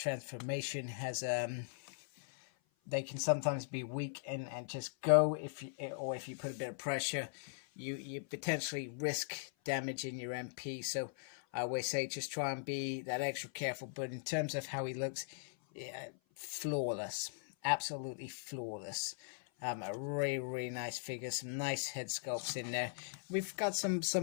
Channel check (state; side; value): silent; right; 51 dB below the other